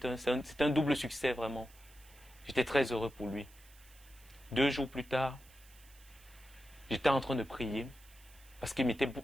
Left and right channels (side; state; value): right; noise; hiss, 24 dB below the sound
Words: c'est un double succès vraiment. J'étais très heureux pour lui. 2 jours plus tard, j'étais en train de prier parce que